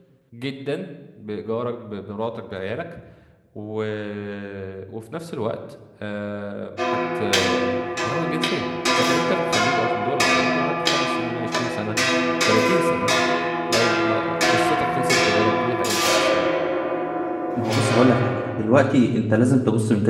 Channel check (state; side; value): identical; both; correlation 1.00